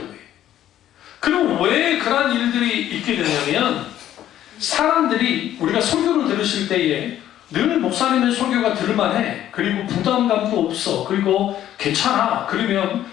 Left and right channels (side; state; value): right; quieter; 12.0 dB